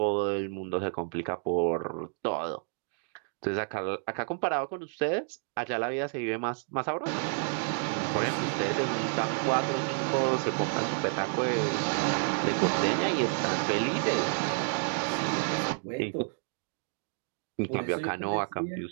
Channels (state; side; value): silent; left; 55 dB below the other